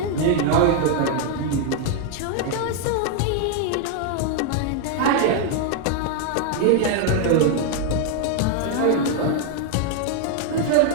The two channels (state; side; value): different; both; correlation 0.00